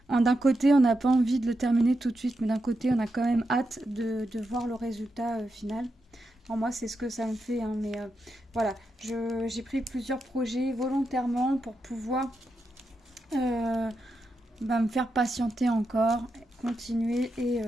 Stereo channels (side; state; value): both; normal; correlation 0.86